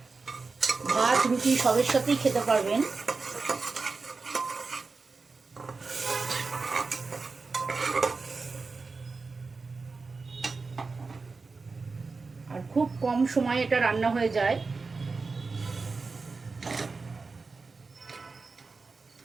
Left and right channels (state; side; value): quieter; left; 4.2 dB